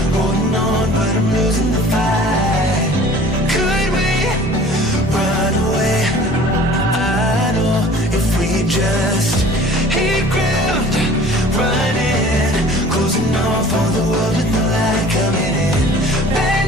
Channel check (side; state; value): both; normal; correlation 0.47